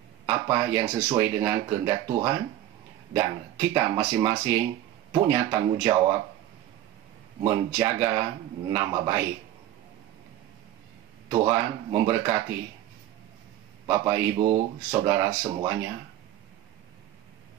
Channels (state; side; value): quieter; left; 12.9 dB